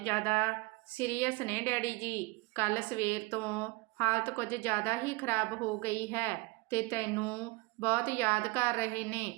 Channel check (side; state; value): left; quieter; 23.7 dB